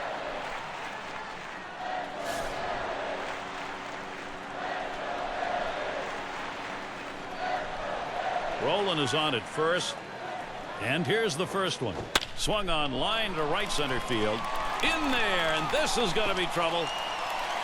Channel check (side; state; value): both; identical; correlation 1.00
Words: Rowland is on at first. And here's the first one. Swung on line to right center field. In there, and this is going to be trouble.